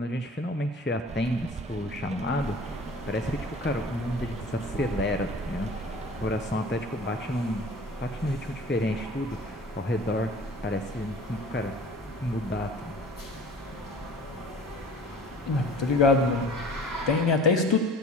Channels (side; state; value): both; normal; correlation 0.45